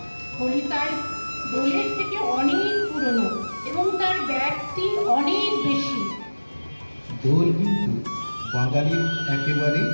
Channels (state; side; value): inverted; both; correlation -1.00